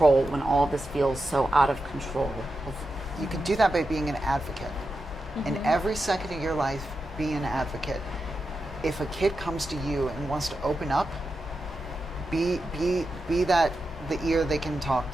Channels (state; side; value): normal; both; correlation 0.89